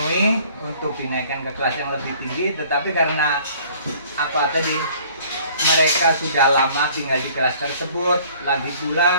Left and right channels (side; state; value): both; inverted; correlation -0.54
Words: untuk dinaikkan ke kelas yang lebih tinggi, tetapi karena mereka sudah lama tinggal di kelas tersebut, lagi